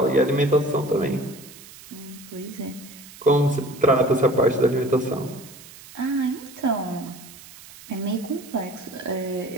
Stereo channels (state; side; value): noise; right; hiss, 19 dB below the sound